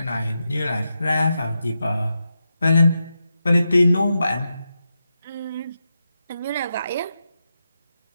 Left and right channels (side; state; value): both; inverted; correlation -0.87